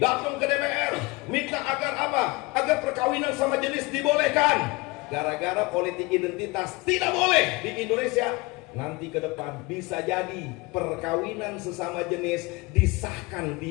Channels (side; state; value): right; quieter; 24.2 dB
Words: datang ke DPR minta agar apa? Agar perkawinan sama jenis dibolehkan. Gara-gara politik identitas tidak boleh di Indonesia. Nanti ke depan bisa jadi perkawinan sesama jenis disahkan